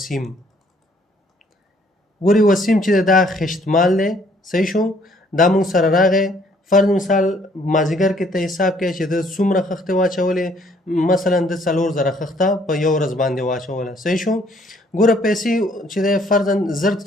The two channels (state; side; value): normal; both; correlation 0.63